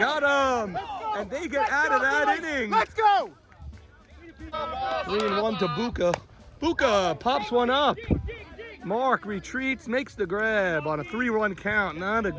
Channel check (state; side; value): identical; both; correlation 1.00